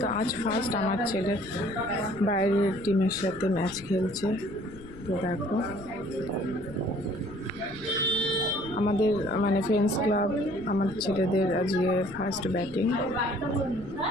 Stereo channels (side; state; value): left; noise; rumble, 18 dB below the sound